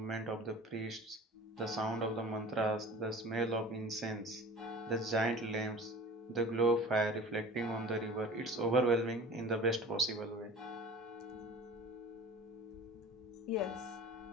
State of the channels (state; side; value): normal; both; correlation 0.40